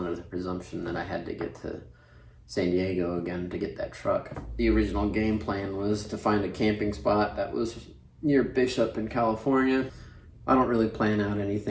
the presumption that I had to get to San Diego again to get that truck. The original game plan was to find a camping spot that was near Bishop in California. I don't really plan out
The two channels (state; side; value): identical; both; correlation 1.00